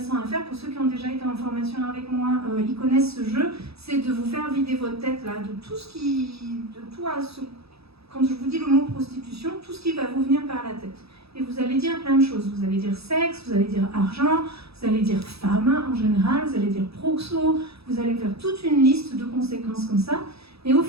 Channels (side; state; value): left; late; 0.77 ms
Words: à faire. Pour ceux qui ont déjà été en formation avec moi, ils connaissent ce jeu. C'est de vous faire vider votre tête là, de tout ce qui... Quand je vous dis le mot prostitution, tout ce qui va vous venir par la tête. Et vous allez dire plein de choses. Vous allez dire sexe, vous allez dire argent, vous allez dire femme en général, vous allez dire proxo, vous allez faire toute une liste de conséquences comme ça. Et au